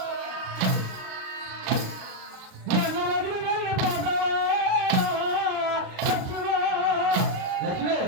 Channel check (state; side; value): late; left; 37 ms